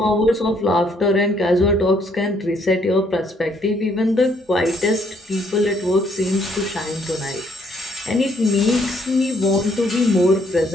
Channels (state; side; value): normal; both; correlation 0.68